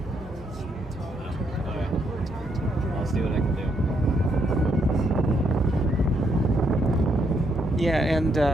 I'll see what I can do. Yeah, and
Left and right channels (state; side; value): normal; both; correlation 0.76